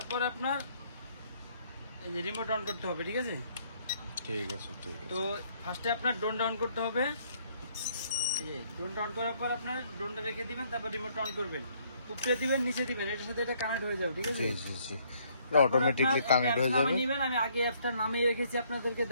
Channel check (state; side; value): inverted; both; correlation -0.66